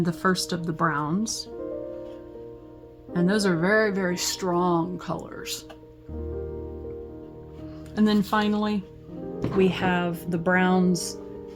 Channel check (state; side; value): identical; both; correlation 1.00